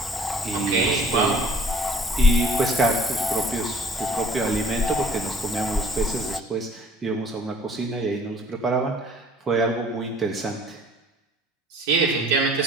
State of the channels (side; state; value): both; normal; correlation 0.53